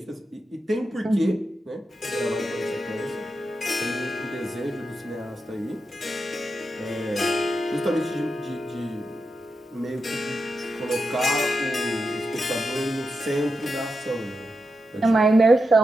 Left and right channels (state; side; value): normal; both; correlation 0.88